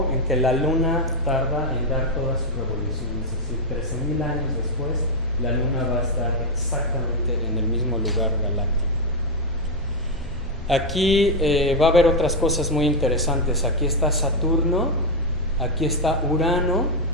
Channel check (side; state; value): both; normal; correlation 0.03